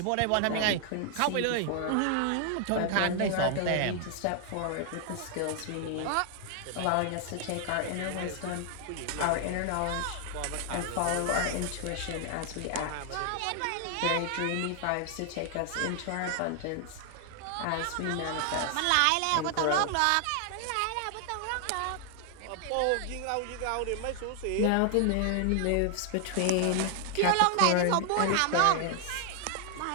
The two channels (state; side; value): different; both; correlation 0.00